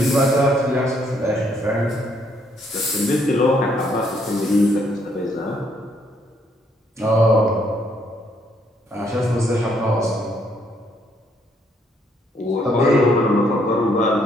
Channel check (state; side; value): normal; both; correlation 0.70